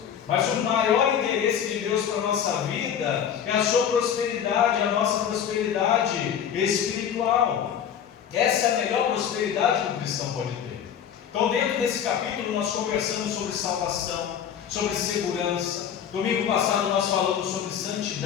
Mas o maior interesse de Deus para a nossa vida é a sua prosperidade, a nossa prosperidade espiritual. Essa é a melhor prosperidade que o cristão pode ter. Então, dentro desse capítulo, nós conversamos sobre salvação, sobre segurança. Domingo passado nós falamos sobre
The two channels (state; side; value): quieter; right; 8.7 dB